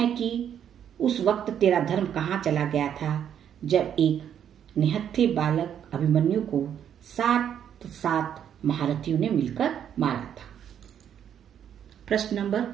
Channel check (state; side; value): quieter; left; 9.2 dB